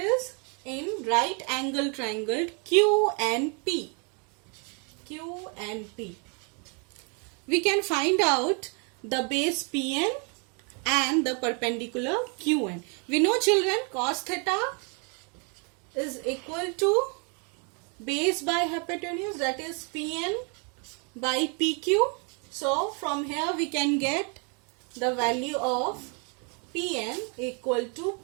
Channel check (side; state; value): left; quieter; 36.2 dB